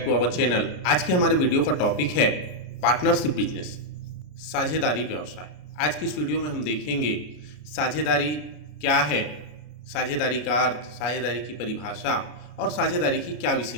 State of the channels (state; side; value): late; right; 33 ms